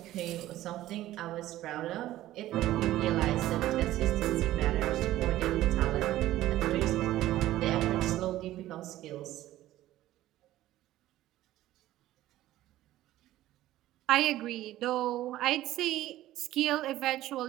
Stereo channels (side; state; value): left; quieter; 14.8 dB